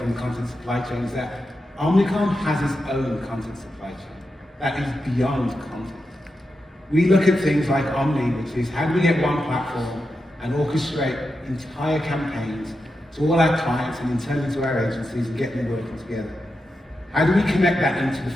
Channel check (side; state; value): both; normal; correlation 0.88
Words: the content supply chain is that Omnicom has its own content supply chain that is beyond content. We look at things like Omni, which is how do we get one platform and orchestrate entire campaigns to all our clients and internally to our agencies and get them working together? How do we connect that into the